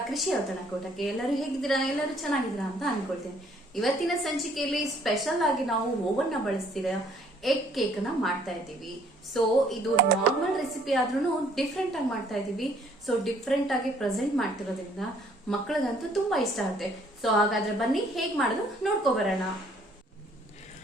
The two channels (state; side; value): normal; both; correlation 0.62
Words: ಕೃಷಿ ಔತಣಕೂಟಕ್ಕೆ. ಎಲ್ಲರೂ ಹೇಗಿದ್ದೀರಾ? ಎಲ್ಲರೂ ಚೆನ್ನಾಗಿದ್ದೀರಾ ಅಂತ ಅನ್ಕೊಳ್ತೇನೆ. ಇವತ್ತಿನ ಸಂಚಿಕೆಯಲ್ಲಿ ಸ್ಪೆಷಲ್ ಆಗಿ ನಾವು ಓವನ್ ನ ಬಳಸ್ತಿರೋ ಎಗ್ ಕೇಕ್ ನ ಮಾಡ್ತಾ ಇದ್ದೀವಿ. ಸೊ ಇದು ನಾರ್ಮಲ್ ರೆಸಿಪಿ ಆದ್ರೂ ಡಿಫ್ರೆಂಟ್ ಆಗಿ ಮಾಡ್ತಾ ಇದೀವಿ. ಸೊ ಡಿಫ್ರೆಂಟ್ ಆಗಿ ಪ್ರೆಸೆಂಟ್ ಮಾಡ್ತಿರೋದ್ರಿಂದ ಮಕ್ಕಳಿಗಂತೂ ತುಂಬಾ ಇಷ್ಟ ಆಗುತ್ತೆ. ಸೊ ಹಾಗಾದ್ರೆ ಬನ್ನಿ ಹೇಗ್ ಮಾಡೋದು ನೋಡ್ಕೊಬರೋಣ.